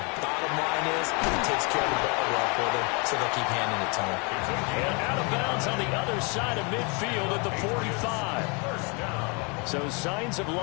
bottom line is he takes care of the ball well for them, so they'll keep handing it to him. And out of bounds on the other side of midfield at the 45. So signs of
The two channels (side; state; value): right; quieter; 32.3 dB